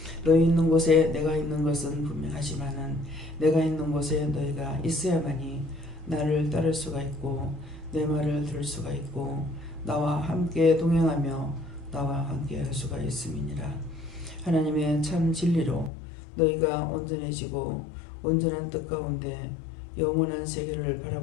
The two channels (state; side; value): drops out; right; at 15.9 s